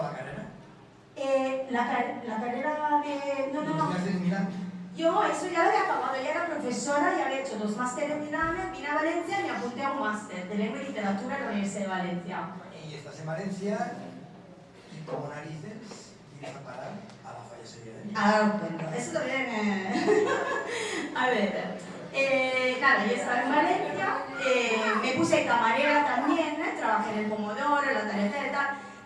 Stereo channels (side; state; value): both; identical; correlation 1.00